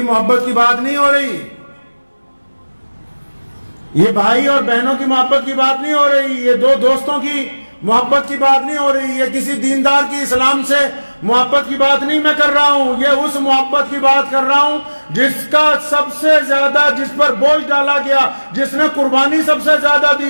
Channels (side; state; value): both; inverted; correlation -1.00